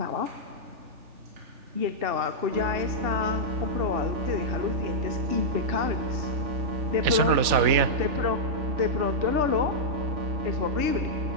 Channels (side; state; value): left; late; 3.4 ms